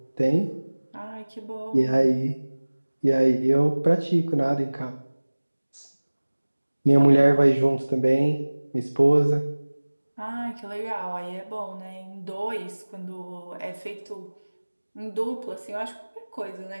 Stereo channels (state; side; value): inverted; both; correlation -1.00